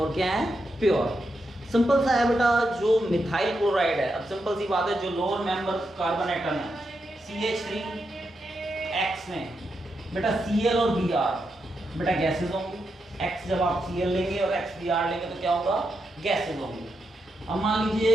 क्या है? प्योर। सिंपल सा है बेटा। जो मिथाइल क्लोराइड है, अब सिंपल सी बात है, जो लोअर मेंबर कार्बन एटम है CH3X में बेटा Cl और Br बेटा गैसेज होंगी। X जब आप Cl लेंगे और X Br लेंगे तो क्या होगा? गैसेज होंगी। अब मान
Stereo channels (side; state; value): both; normal; correlation 0.85